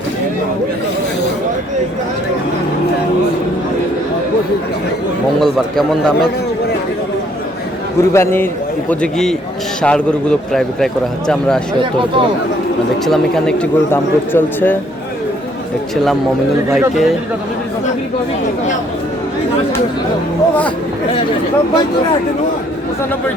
মঙ্গলবার। কেমন দামের কুরবানির উপযোগী ষাঁড় গরুগুলো প্রায় বিক্রয় করা হচ্ছে। আমরা দেখছিলাম এখানে একটি গরুর দাম দর চলছে। দেখছিলাম মমিনুল ভাইকে।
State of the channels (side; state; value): both; normal; correlation 0.65